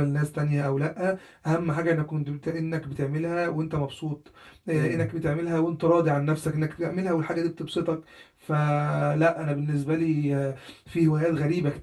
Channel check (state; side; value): identical; both; correlation 1.00